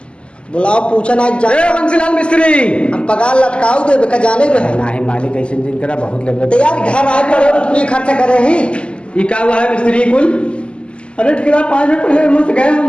बुलाओ पूछा ना जा। बंसीलाल मिस्त्री हम पगार लटकाऊ दे का जाने रहे ना है मालिक, ऐसे दिन करा बहुत लग तो यार घर आए पर अपनी खर्चा करे ही। ये क्या हुआ है मिस्त्री कुल? अरे ठेकेदार 5 मिनट पहले मुझसे गए,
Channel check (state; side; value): late; right; 0.053 ms